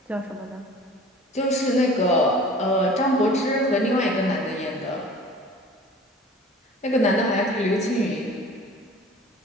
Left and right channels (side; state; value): both; normal; correlation 0.44